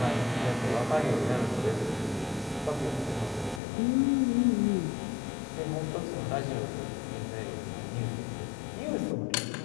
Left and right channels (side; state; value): right; drops out; at 3.6 s